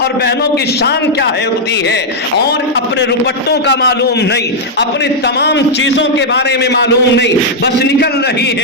اور بہنوں کی شان کیا ہوتی ہے، اور اپنے روپٹوں کا معلوم نہیں، اپنی تمام چیزوں کے بارے میں معلوم نہیں، بس نکل رہی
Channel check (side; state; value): both; normal; correlation -0.03